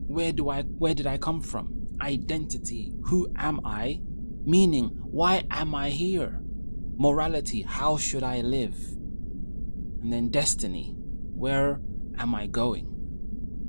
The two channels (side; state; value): both; inverted; correlation -1.00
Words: Where did I come from? Identity. Who am I? Meaning, why am I here? Morality. How should I live? And then destiny. Where am I going?